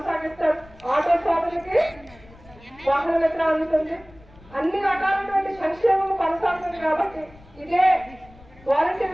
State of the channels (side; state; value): left; noise; rumble, 24 dB below the sound